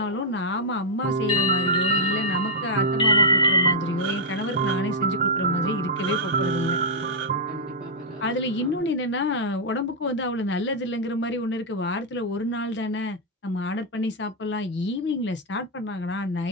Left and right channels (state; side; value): normal; both; correlation -0.06